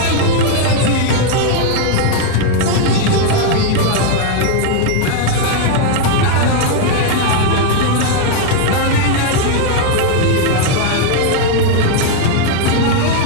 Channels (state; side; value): different; both; correlation 0.00